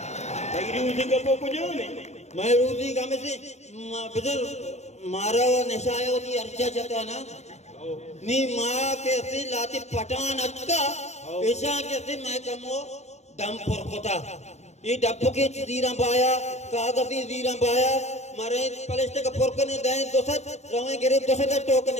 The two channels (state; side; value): late; right; 0.32 ms